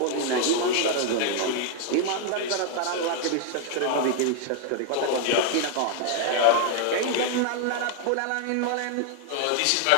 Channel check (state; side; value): different; both; correlation 0.00